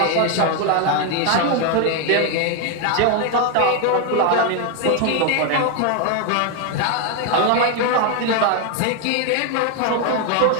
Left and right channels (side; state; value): both; different; correlation 0.01